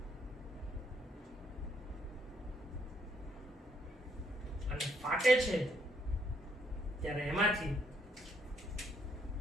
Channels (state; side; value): normal; both; correlation 0.71